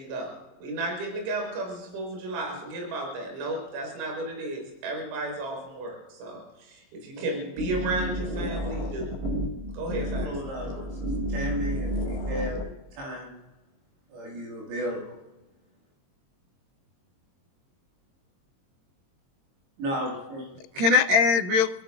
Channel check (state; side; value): late; left; 22 ms